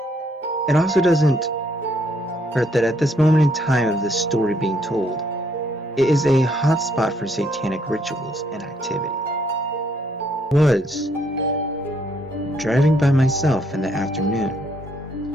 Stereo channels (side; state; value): both; normal; correlation 0.70